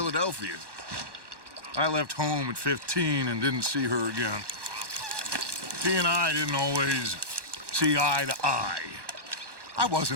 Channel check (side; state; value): left; late; 1.1 ms